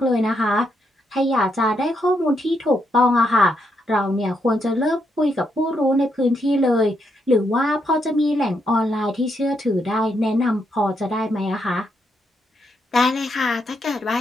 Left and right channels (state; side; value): normal; both; correlation 0.79